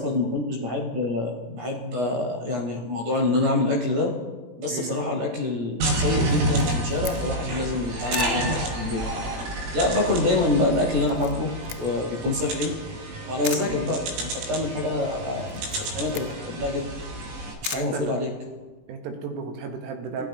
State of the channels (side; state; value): left; late; 18 ms